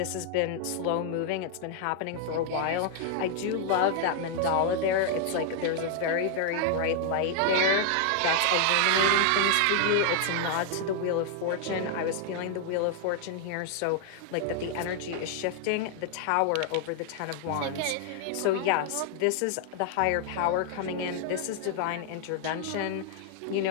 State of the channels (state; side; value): different; both; correlation 0.00